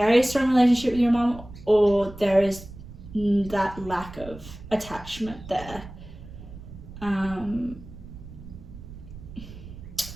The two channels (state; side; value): noise; right; rumble, 15 dB below the sound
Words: strong relationship with your mom, or there is that lack of attachment there.